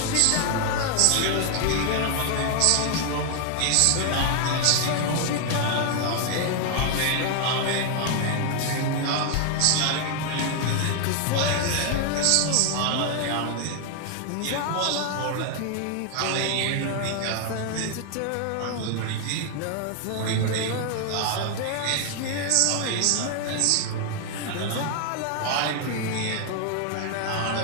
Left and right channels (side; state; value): both; different; correlation 0.00